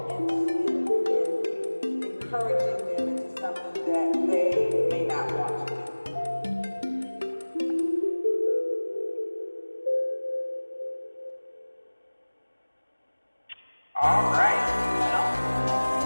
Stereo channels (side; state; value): both; inverted; correlation -1.00